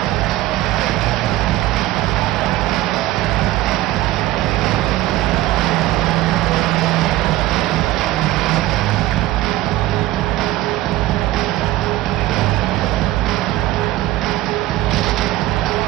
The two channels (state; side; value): quieter; left; 15.9 dB